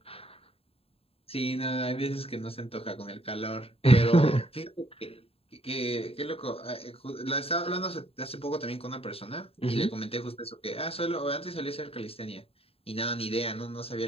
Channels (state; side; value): late; right; 0.28 ms